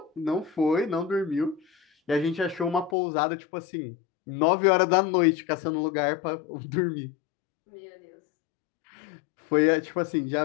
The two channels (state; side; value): drops out; right; at 3.0 s